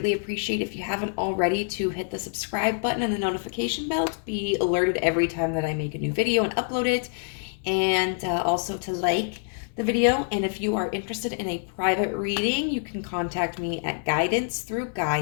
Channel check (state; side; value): silent; right; 61 dB below the other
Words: appreciate, if you haven't already, to hit the subscribe button and the notification bell to be alerted every time that I make a new video and upload it, and also to like the video. And if you are interested in a private reading, you can contact me at